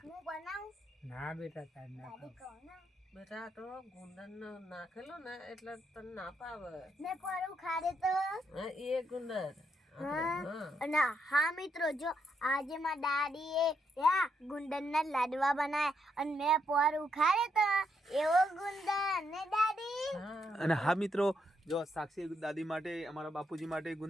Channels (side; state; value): both; normal; correlation 0.78